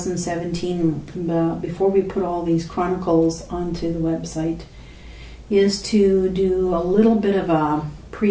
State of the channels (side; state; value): both; identical; correlation 1.00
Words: before we put all these Chronicles onto the website, is to do a little bit of a